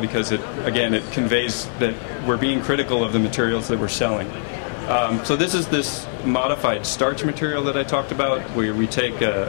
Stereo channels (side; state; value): right; silent; digital silence